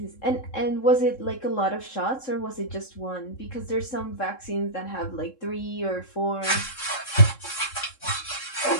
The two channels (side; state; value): right; late; 3.7 ms